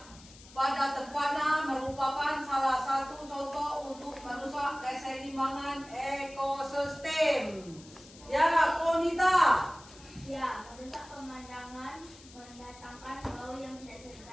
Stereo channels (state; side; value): noise; left; hiss, 21 dB below the sound